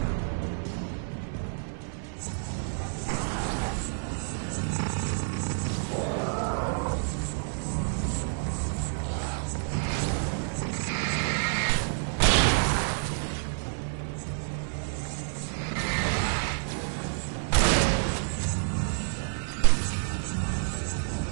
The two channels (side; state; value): left; silent; digital silence